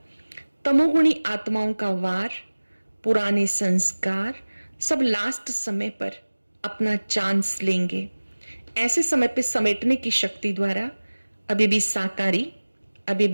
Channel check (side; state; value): both; inverted; correlation -1.00